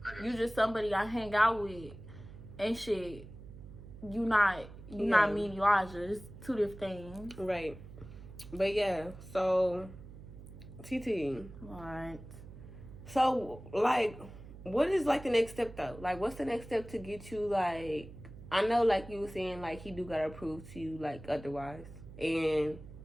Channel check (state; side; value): noise; right; hum, 15 dB below the sound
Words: You just somebody I hang out with and shit. you not me and Elijah. It's two different things. Right. But yeah, so TT. Right. So like, what is like the next step though? Like, what's the next step to get you like? I know, like you were saying, like he do gotta prove to you like otherwise, and